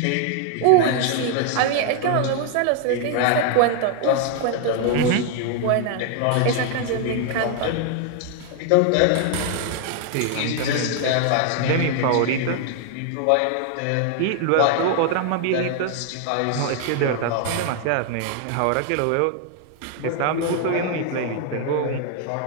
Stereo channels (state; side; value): different; both; correlation 0.00